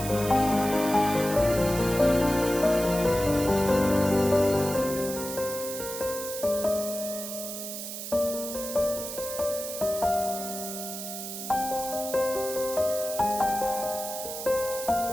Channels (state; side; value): noise; right; hiss, 7 dB below the sound